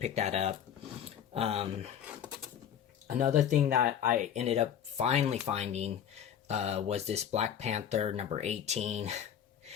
that up. Another thing that I ended up finally finding was this Black Panther #18.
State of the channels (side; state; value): right; quieter; 9.1 dB